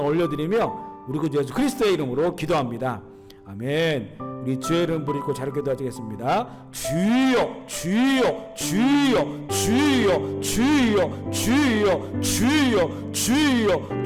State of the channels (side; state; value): both; identical; correlation 1.00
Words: 올려드리며 우리 구주 예수 그리스도의 이름으로 기도합니다. 아멘. 우리 주의 이름 부르고 자료 기도하겠습니다. 주여 주여 주여 주여 주여 주여 주여 주여